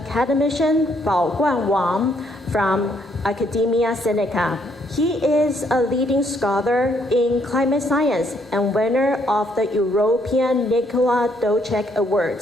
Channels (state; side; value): normal; both; correlation 0.70